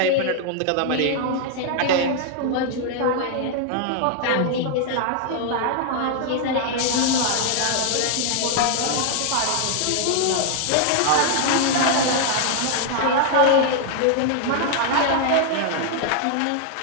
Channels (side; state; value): both; different; correlation 0.00